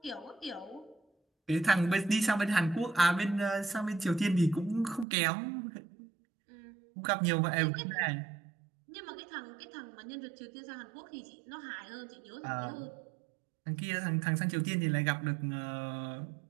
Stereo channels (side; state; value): left; drops out; at 5.1 s